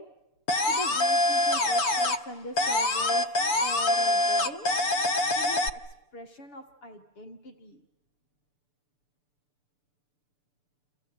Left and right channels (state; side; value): late; right; 6.8 ms